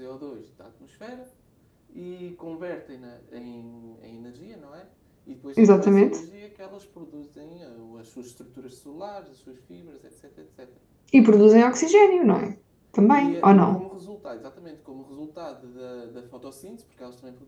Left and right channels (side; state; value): both; identical; correlation 1.00